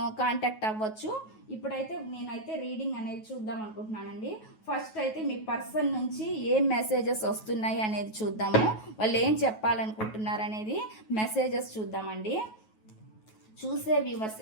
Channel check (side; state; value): right; late; 9.3 ms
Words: కాంటాక్ట్ అవ్వచ్చు. ఇప్పుడైతే నేనైతే రీడింగ్ అనేది చూద్దాం అనుకుంటున్నానండి. ఫస్ట్ అయితే మీ పర్సన్ నుంచి ఏం మెసేజెస్ వస్తున్నాయి అనేది చూద్దాము. వాళ్ళు ఏం చెప్పాలనుకుంటున్నారు అనేది మెసేజెస్ చూద్దామండి. చూసే వ్యూవర్స్